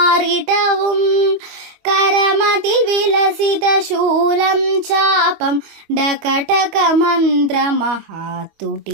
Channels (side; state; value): left; late; 25 ms